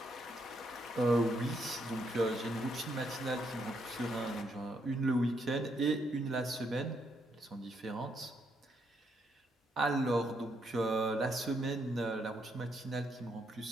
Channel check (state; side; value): normal; both; correlation 0.76